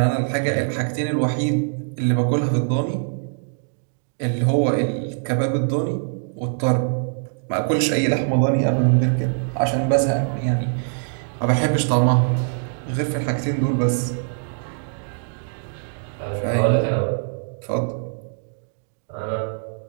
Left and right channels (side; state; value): left; silent; digital silence